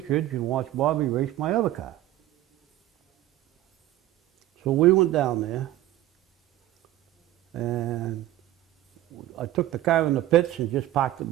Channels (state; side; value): quieter; left; 14.4 dB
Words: Ridge and watch Bobby race my other car. So we went down there, and I took the car in the pits and just parked